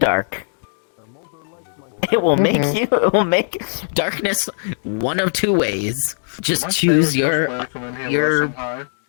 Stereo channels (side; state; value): right; silent; digital silence